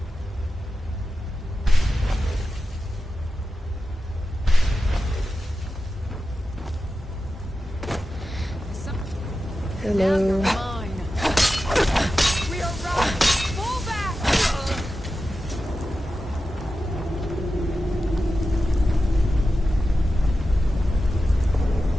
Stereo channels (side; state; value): both; normal; correlation 0.92